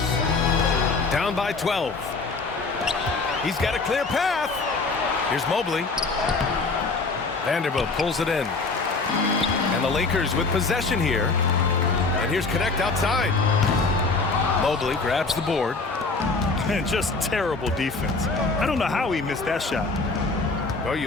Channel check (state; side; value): quieter; right; 3.9 dB